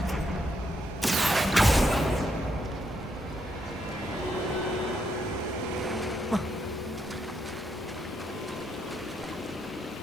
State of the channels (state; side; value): normal; both; correlation 0.78